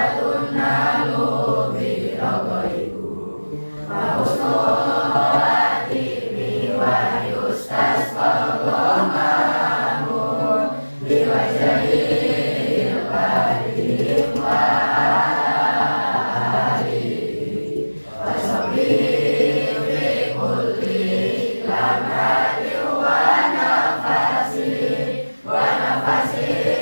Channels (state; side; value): inverted; both; correlation -1.00